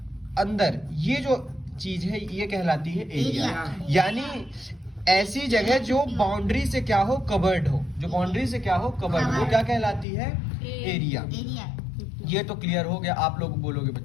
अंदर ये जो चीज है, ये कहलाती है एरिया। यानी ऐसी जगह जो बाउंड्री से क्या हो? कवर्ड हो। जो बाउंड्री से क्या हो? कवर्ड हो, क्या कहलाती है? एरिया। ये तो क्लियर हो गया, आप लोग बोलोगे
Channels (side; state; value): right; drops out; at 10.1 s